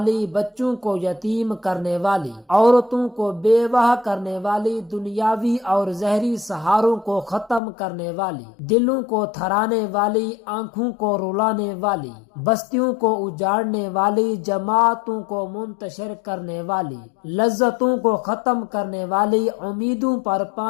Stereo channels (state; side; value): drops out; right; at 7.6 s